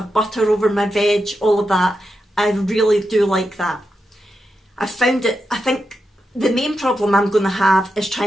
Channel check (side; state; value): both; normal; correlation 0.87